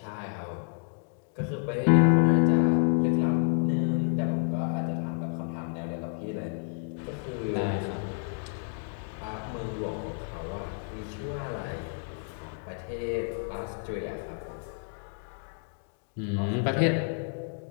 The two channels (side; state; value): right; silent; 58 dB below the other